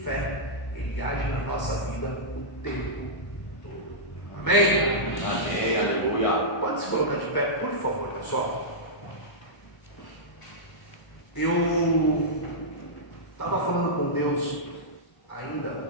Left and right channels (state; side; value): late; right; 1.0 ms